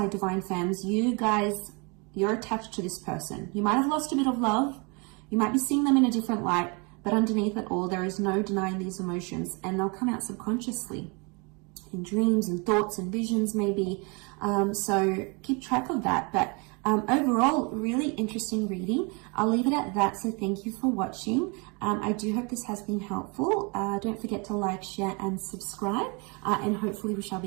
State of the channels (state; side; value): quieter; left; 30.8 dB